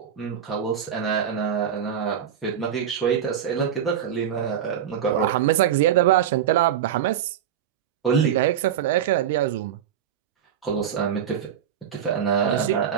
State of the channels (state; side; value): quieter; left; 9.1 dB